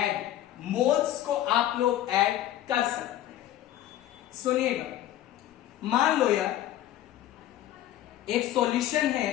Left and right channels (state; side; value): quieter; right; 13.0 dB